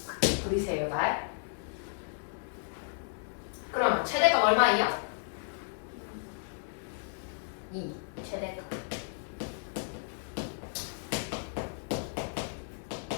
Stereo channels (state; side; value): silent; right; 56 dB below the other